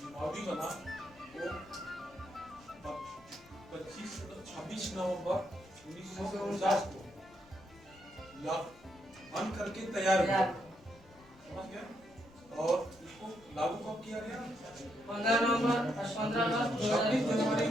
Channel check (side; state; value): left; noise; rumble, 26 dB below the sound